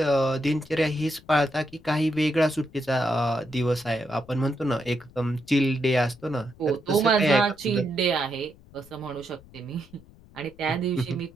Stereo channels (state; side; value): noise; left; rumble, 24 dB below the sound